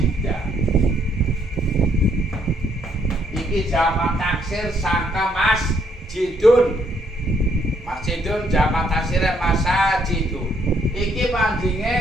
Iki jamak taksir sangka masjidun. Masjidun jamak taksirnya masajidun. Iki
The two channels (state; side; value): normal; both; correlation 0.70